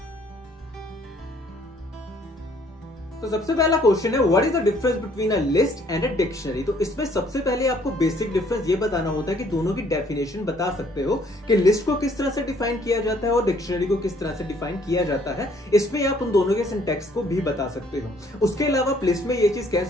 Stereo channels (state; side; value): normal; both; correlation 0.62